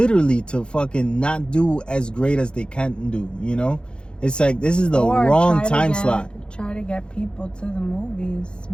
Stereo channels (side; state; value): right; late; 0.052 ms